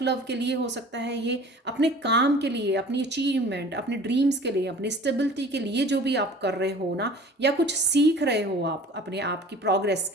लव के लिए हो सकता है ये, अपने काम के लिए, अपनी अचीवमेंट, अपने ड्रीम्स के लिए, अपनी स्टेबिलिटी के लिए जो भी आप कर रहे हो ना, या कुछ सीख रहे हो आप अपने आप की प्रोग्रेस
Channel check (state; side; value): normal; both; correlation 0.45